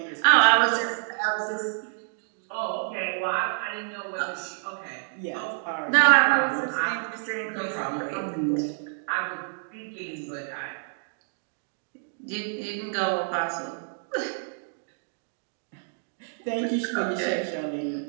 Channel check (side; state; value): left; silent; digital silence